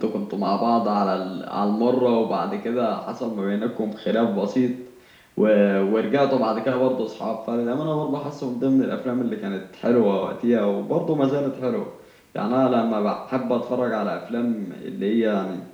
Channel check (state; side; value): identical; both; correlation 1.00